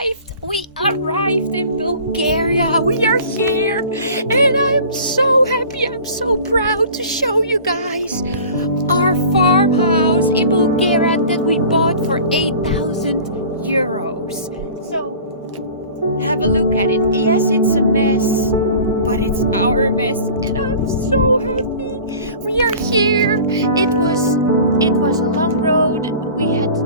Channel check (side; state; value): both; inverted; correlation -0.43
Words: we arrived in Bulgaria. We are here and I'm so happy, I'm so proud to show you guys our farmhouse in Bulgaria that we bought for 8,000 euros. So have a look at it. Yes, it's a mess, but it's our mess and I'm so happy. We are here. It was a long road.